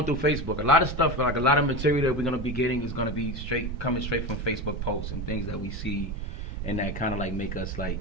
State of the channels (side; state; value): both; normal; correlation 0.22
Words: through Facebook. A lot of stuff, a lot of material that we're gonna be getting is gonna be coming straight from Facebook posts and things that we see. And that kind of make us